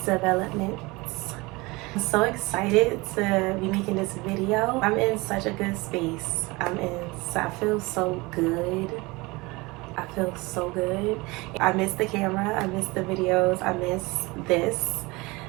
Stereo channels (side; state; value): left; quieter; 23.5 dB